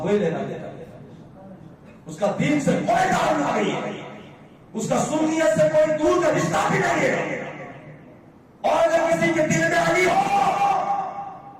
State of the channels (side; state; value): both; identical; correlation 1.00